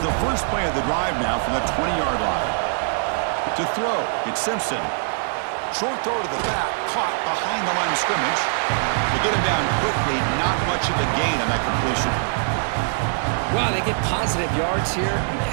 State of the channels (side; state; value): left; silent; 55 dB below the other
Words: the first play of the drive now from the 20-yard line. To throw, it's Simpson. Short throw to the back, caught behind the line of scrimmage. To get him down quickly, not much of a gain on that completion. Wow, they get positive yards here. You